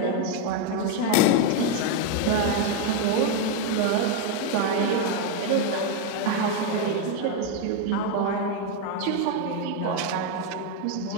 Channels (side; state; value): both; different; correlation 0.02